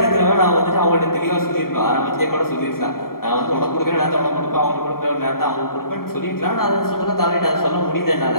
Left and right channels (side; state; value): right; late; 0.93 ms